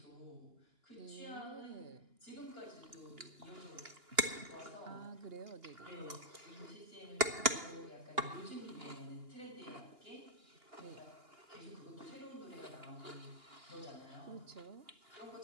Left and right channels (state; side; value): late; left; 2.8 ms